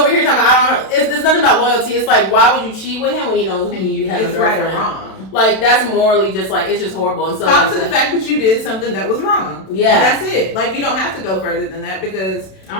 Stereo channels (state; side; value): late; right; 32 ms